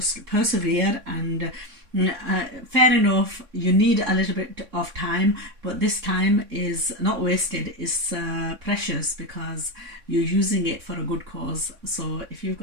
persevere, and fair enough, you need a little bit of time, but this time is not wasted, it's precious, because you're using it for a good cause. So if you've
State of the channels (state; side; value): late; left; 3.6 ms